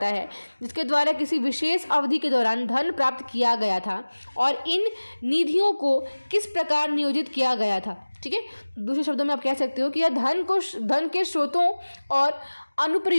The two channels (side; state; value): both; inverted; correlation -1.00